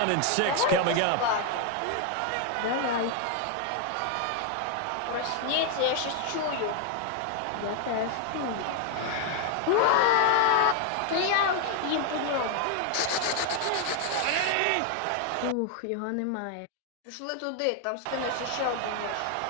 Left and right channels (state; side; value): different; both; correlation 0.01